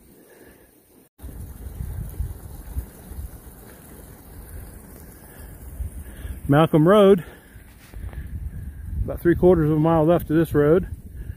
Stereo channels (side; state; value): both; identical; correlation 1.00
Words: Malcolm Road, about 3/4 mile left of this road.